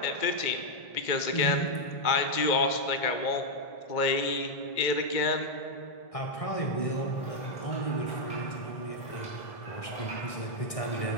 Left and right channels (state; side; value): late; right; 1.6 ms